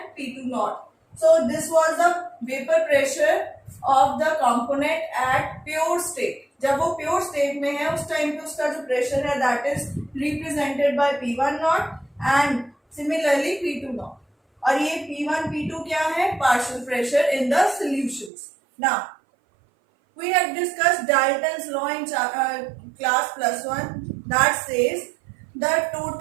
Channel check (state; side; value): drops out; left; at 18.3 s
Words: P2 nought. So this was the vapour pressure of the component at pure state. जब वो प्योर स्टेट में है उस टाइम पे उसका जो प्रेशर है that is represented by P1 not and similarly P2 naught. और ये P1 P2 क्या है, partial pressure in the solutions. Now we have discussed Dalton's law in class +1 that says the